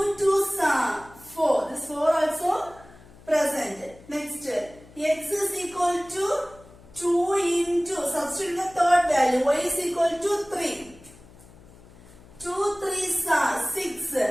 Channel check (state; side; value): noise; left; hum, 23 dB below the sound